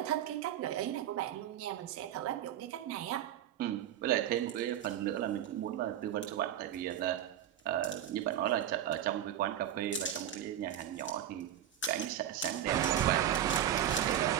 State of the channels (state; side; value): quieter; left; 10.9 dB